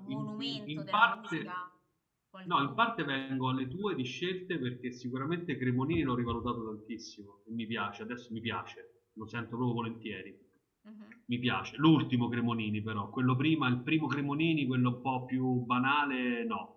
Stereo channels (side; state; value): both; identical; correlation 1.00